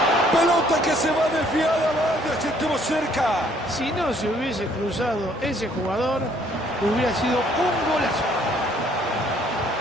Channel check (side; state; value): both; normal; correlation 0.63